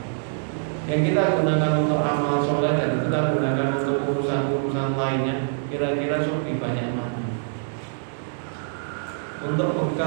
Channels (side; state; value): left; silent; digital silence